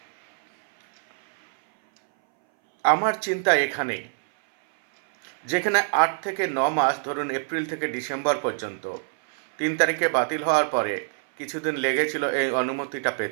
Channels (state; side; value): silent; left; 60 dB below the other